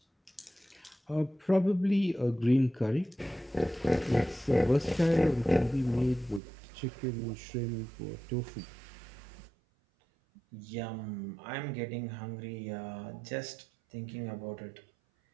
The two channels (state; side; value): drops out; left; at 6.4 s